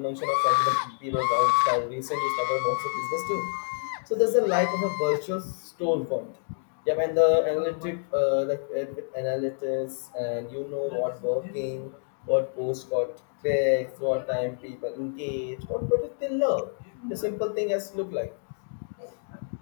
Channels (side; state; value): right; silent; digital silence